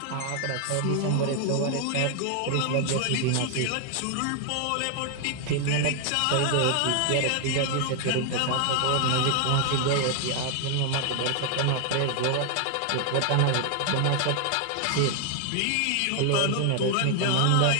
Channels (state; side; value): different; both; correlation 0.00